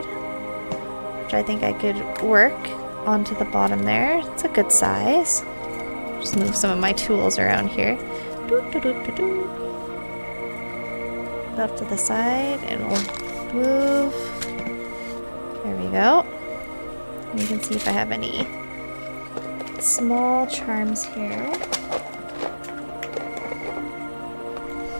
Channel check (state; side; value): inverted; both; correlation -1.00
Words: which I think I could work onto the bottom there. It's a good size. Just move some of my tools around here. Up to the side, and we'll move. There we go. And you can see if I have any small charms here.